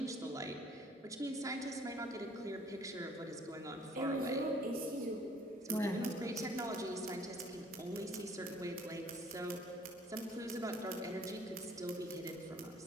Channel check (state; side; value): normal; both; correlation 0.57